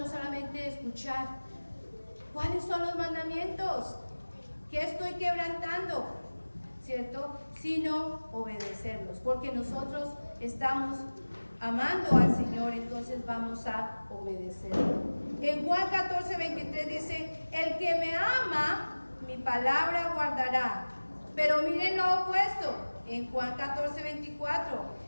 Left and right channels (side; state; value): both; inverted; correlation -1.00